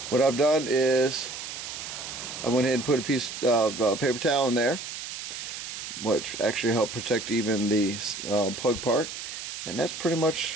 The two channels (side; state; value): right; noise; hiss, 8 dB below the sound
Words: what I've done is I went ahead and put a piece of paper towel in there, which actually helped protect even the plug part. And that's pretty